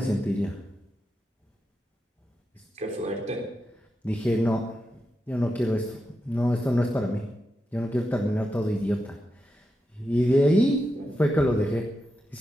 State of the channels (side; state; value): both; normal; correlation 0.88